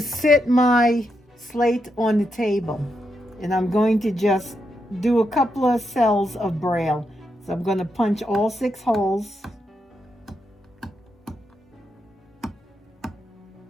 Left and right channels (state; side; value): normal; both; correlation 0.83